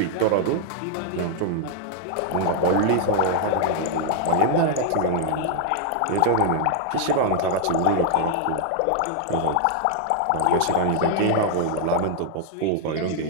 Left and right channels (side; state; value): both; different; correlation 0.00